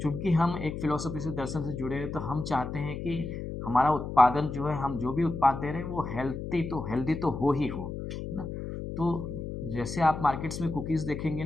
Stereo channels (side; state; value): left; noise; hum, 6 dB below the sound